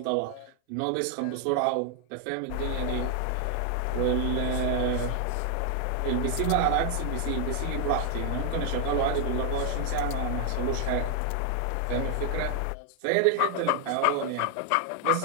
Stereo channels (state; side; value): different; both; correlation 0.00